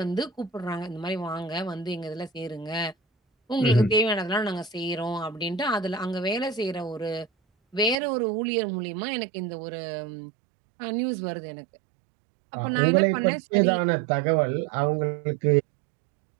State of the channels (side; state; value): left; drops out; at 8.0 s